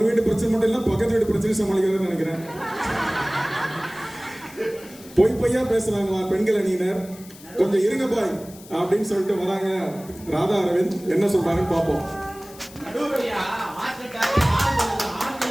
வீட்டு பிரச்சனை மட்டும் இல்ல, பக்கத்து வீட்டு பிரச்சனை சமாளிக்கிறதுன்னு நினைக்கிறேன். பொய்யா பேசுறாங்க பெண்கள் அணியினர். கொஞ்சம் இருங்க பாய் அப்படின்னு சொல்லிட்டு வராங்க. ராதா அரவிந்த் என்ன சொல்றாங்கன்னு பார்ப்போம்.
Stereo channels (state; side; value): noise; left; hiss, 20 dB below the sound